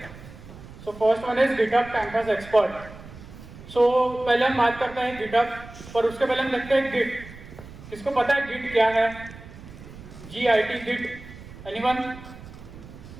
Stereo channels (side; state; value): right; noise; rumble, 16 dB below the sound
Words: So first one is GitHub campus expert. So पहले हम बात करते हैं गिटहब, पर उसके पहले हम देखते हैं गिट। किसको पता है गिट क्या है? GIT git, anyone?